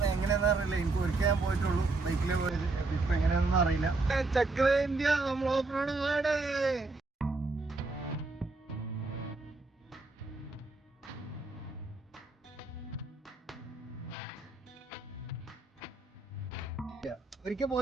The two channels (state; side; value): quieter; left; 3.5 dB